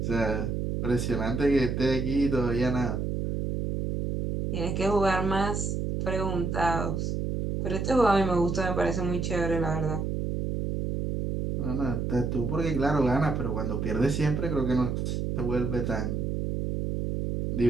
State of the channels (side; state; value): right; noise; hum, 1 dB below the sound